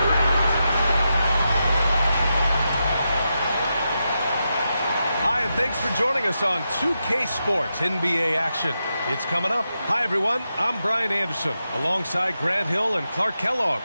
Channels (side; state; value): both; inverted; correlation -0.87